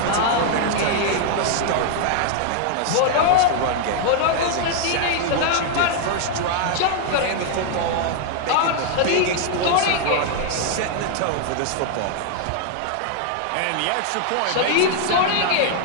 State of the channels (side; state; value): both; different; correlation 0.00